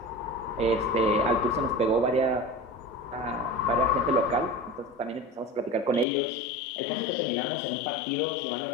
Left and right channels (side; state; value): right; drops out; at 6.1 s